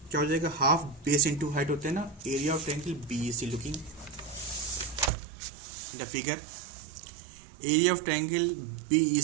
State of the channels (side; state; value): left; drops out; at 5.1 s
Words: क्या हो जाएगा, हाफ बेस इंटू हाइट होते हैं ना। Area of triangle BEC, looking the figure, area of triangle